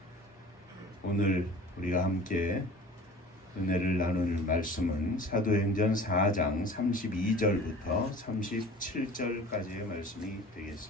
오늘 우리가 함께 은혜를 나눌 말씀은 사도행전 4장 32절부터 37절까지의 말씀이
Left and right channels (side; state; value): both; normal; correlation 0.43